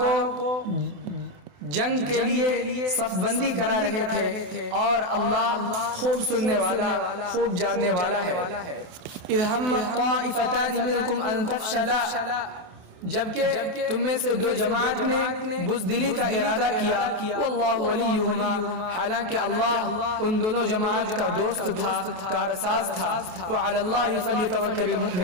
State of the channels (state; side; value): late; left; 28 ms